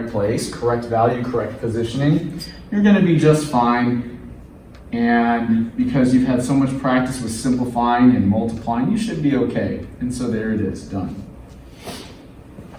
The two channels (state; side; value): identical; both; correlation 1.00